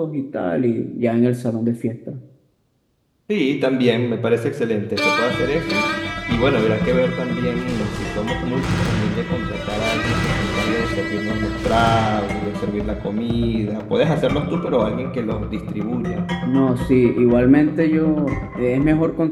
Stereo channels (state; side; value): identical; both; correlation 1.00